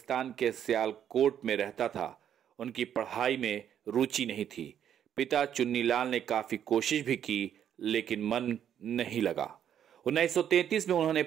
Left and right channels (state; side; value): quieter; left; 9.5 dB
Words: के सियालकोट में रहता था। उनकी पढ़ाई में रुचि नहीं थी। पिता चुन्नीलाल ने काफी कोशिश भी की, लेकिन मन नहीं लगा। 1933 में उन्होंने